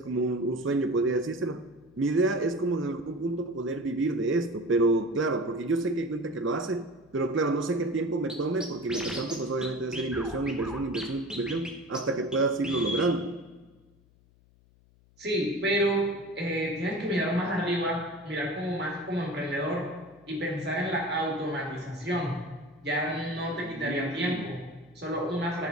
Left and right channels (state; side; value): noise; left; hum, 30 dB below the sound